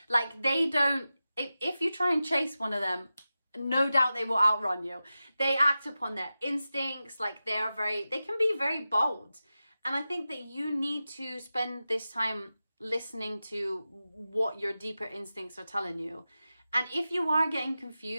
Like, they don't, if you try and chase one of them, no doubt they will outrun you. They act upon their instincts. Like, they can be very bold. And I think that you need to spend this time listening to what your deeper instincts are telling you. And if you are getting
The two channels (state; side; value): inverted; both; correlation -0.94